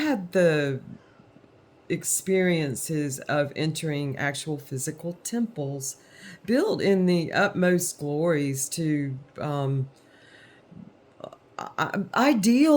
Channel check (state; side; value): identical; both; correlation 1.00